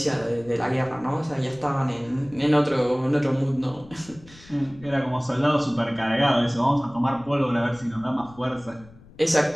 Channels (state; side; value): noise; left; rumble, 23 dB below the sound